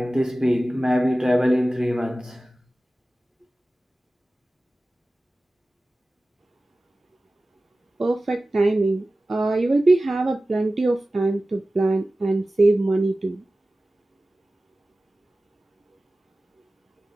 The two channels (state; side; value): normal; both; correlation 0.96